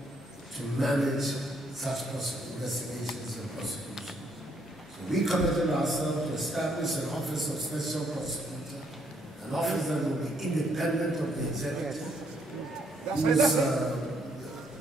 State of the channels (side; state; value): both; normal; correlation 0.70